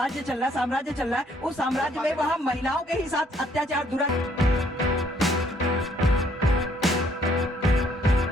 चल रहा है, साम्राज्य चल रहा है। उस साम्राज्य में वहाँ महिलाओं के ही साथ अत्याचार दुराचार।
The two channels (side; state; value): both; normal; correlation 0.65